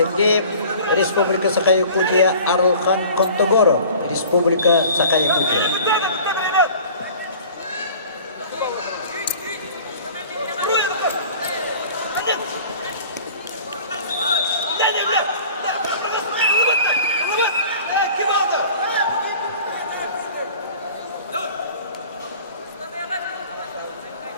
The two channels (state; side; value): inverted; both; correlation -0.45